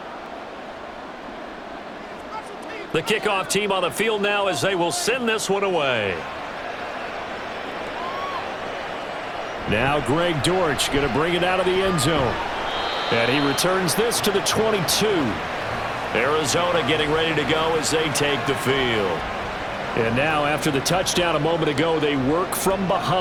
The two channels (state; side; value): identical; both; correlation 1.00